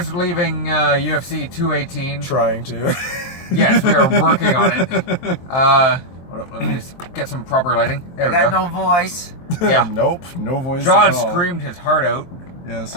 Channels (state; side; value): late; right; 23 ms